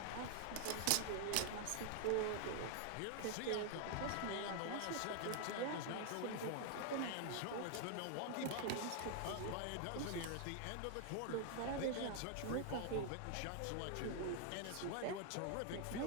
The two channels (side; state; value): both; different; correlation 0.00